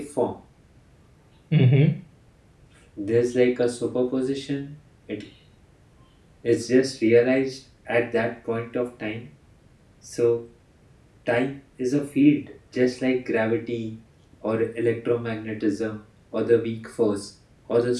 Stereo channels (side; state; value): both; identical; correlation 1.00